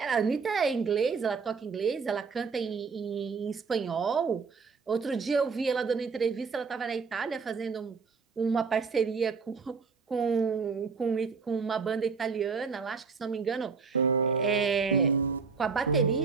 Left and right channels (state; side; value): quieter; left; 5.1 dB